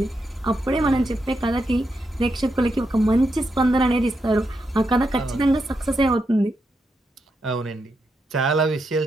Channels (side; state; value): both; normal; correlation 0.83